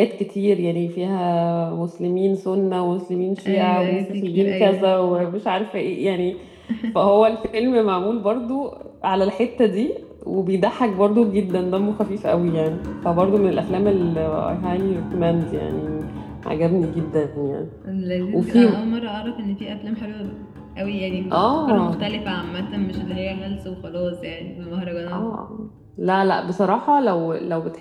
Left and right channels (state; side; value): identical; both; correlation 1.00